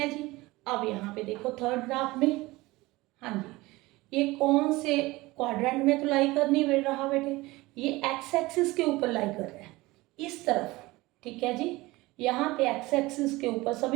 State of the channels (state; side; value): quieter; left; 20.6 dB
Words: जी। अब यहाँ पे देखो थर्ड ग्राफ में, हाँ जी, ये कौन से क्वाड्रेंट में तो लाई कर नहीं रहा बेटे? ये एक्स एक्सिस के ऊपर लाई कर रहा है, इस तरफ, ठीक है जी। यहाँ पे एक्स एक्सिस के ऊपर